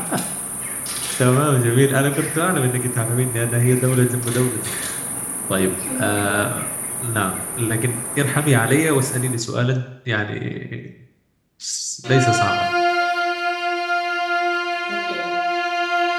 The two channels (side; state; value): both; identical; correlation 1.00